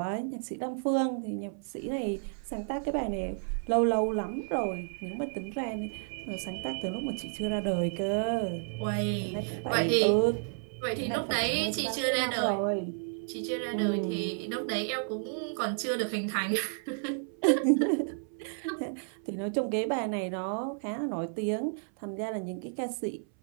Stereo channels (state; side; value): silent; left; 57 dB below the other